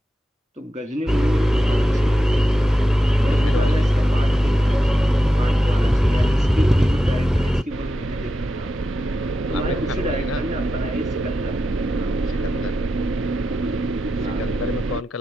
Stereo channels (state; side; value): normal; both; correlation 0.89